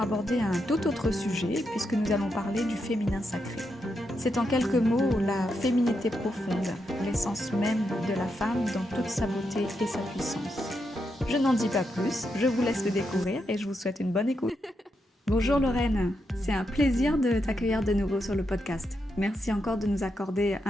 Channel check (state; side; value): normal; both; correlation 0.83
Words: un tout autre sujet puisque nous allons parler du féminin sacré. C'est en quelques mots la féminité profonde, l'essence même de la femme dans toute sa beauté et sa puissance. Je n'en dis pas plus, je vous laisse le découvrir et je vous souhaite une bonne écoute. Bonjour Lorraine, c'est un plaisir de t'accueillir de nouveau sur le podcast. Merci encore de nous accorder